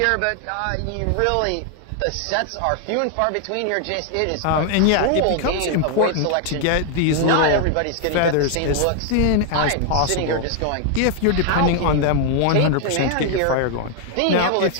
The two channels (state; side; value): different; both; correlation 0.00